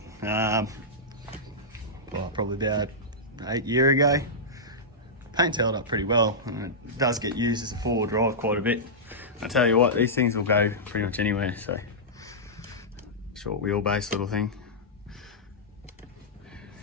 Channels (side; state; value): both; normal; correlation -0.12